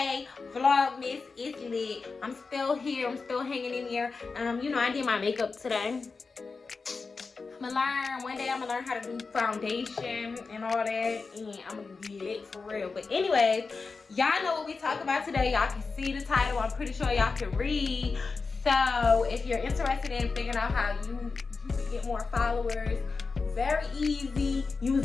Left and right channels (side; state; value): right; quieter; 4.4 dB